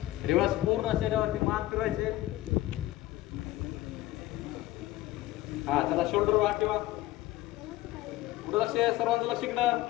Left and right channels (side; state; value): right; quieter; 16.5 dB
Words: रिवर्स पूर्ण शरीरावरती मान फिरवायचे. हा चला शोल्डर वर ठेवा. पुढे लक्ष सर्वांचं लक्ष इकडं.